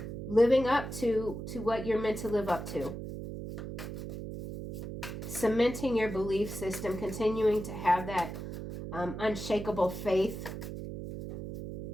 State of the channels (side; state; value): right; noise; hum, 7 dB below the sound